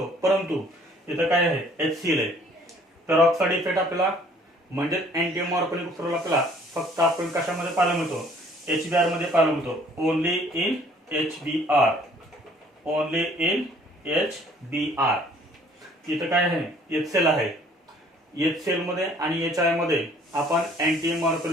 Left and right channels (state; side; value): normal; both; correlation 0.57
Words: परंतु इथं काय आहे? HCl आहे. पेरॉक्साइड इफेक्ट आपल्याला म्हणजे अँटी मार्कोनिक उपसर्ग आपल्याला फक्त आपण कशामध्ये पाहायला मिळतो? HBr मध्ये पाहायला मिळतो. Only in HBr. Only in HBr. इथं काय आहे? HCl आहे. HCl मध्ये आणि HI मध्ये आपण अँटी